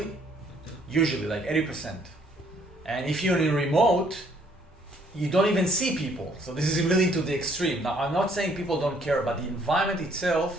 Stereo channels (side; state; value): both; normal; correlation 0.64